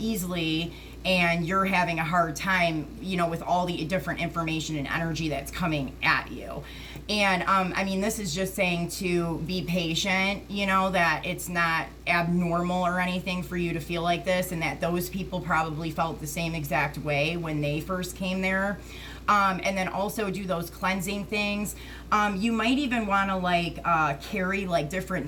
and you're having a hard time, you know, with all the different information and energy that's coming at you. And I mean, this is just saying to be patient, you know, that it's not abnormal or anything for you to feel like this, and that those people probably felt the same exact way when they first came there. And then also do those cleansing things. You might even want to like carry like different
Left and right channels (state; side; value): identical; both; correlation 1.00